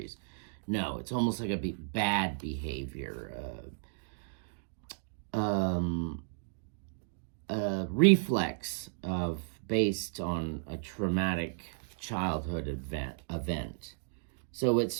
No, it's almost like a bad behavior. A reflex based on a traumatic childhood event. So it's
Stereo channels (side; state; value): left; silent; digital silence